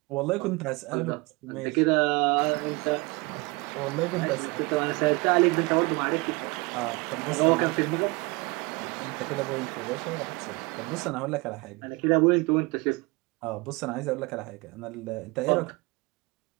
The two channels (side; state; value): left; quieter; 25.7 dB